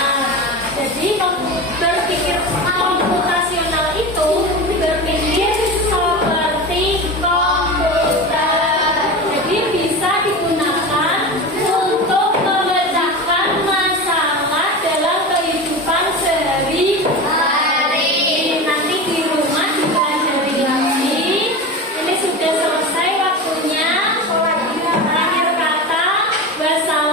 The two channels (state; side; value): normal; both; correlation 0.27